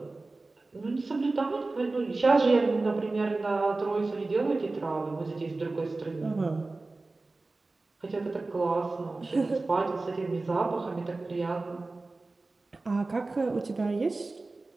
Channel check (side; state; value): left; quieter; 3.4 dB